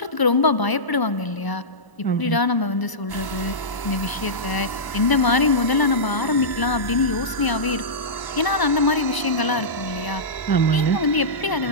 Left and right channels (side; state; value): right; late; 1.0 ms